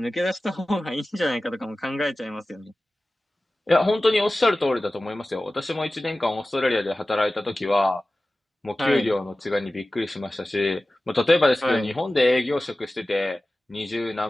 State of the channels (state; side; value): normal; both; correlation 0.96